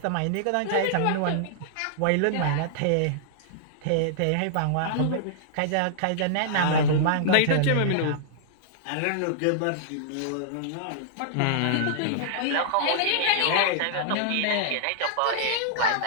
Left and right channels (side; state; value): both; different; correlation -0.01